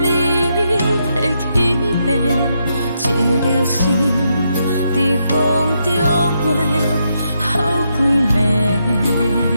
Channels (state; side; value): inverted; both; correlation -0.80